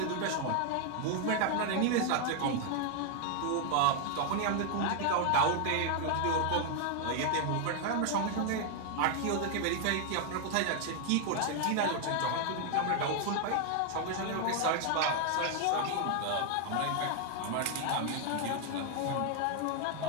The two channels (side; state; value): both; different; correlation 0.00